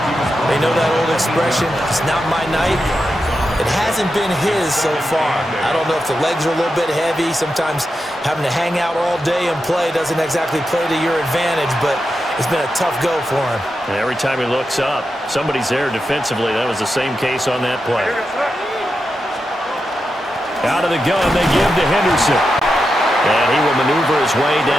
They know that old expression, it's not my night. It hasn't been his so far. I don't know if the legs are a little bit heavy. Sometimes having to hang out all day and play doesn't exactly play to your advantage, but it's been a tough go for him. And every time he looks up, somebody's there defensively. That was the same case on that play. Out of the gun, they give to Henderson. And he will maneuver his way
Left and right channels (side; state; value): both; normal; correlation 0.88